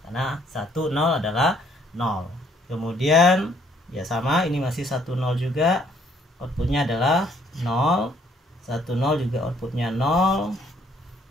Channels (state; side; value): normal; both; correlation 0.64